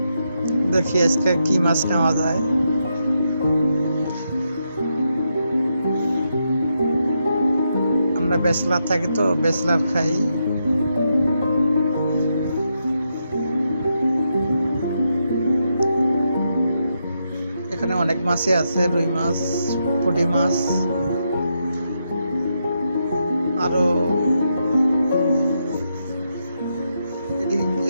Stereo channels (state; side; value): inverted; both; correlation -0.82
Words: দেখি আজকে কি মাছ নেওয়া যায়। আমরা ব্যাচলার থাকি তো ব্যাচলার খাই। এখানে অনেক মাছই আছে, রুই মাছ, পুঁটি মাছ, আরো